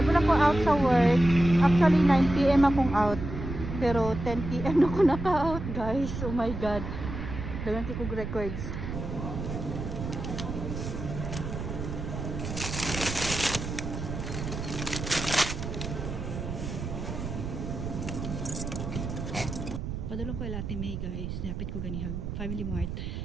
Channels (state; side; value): noise; right; rumble, 6 dB below the sound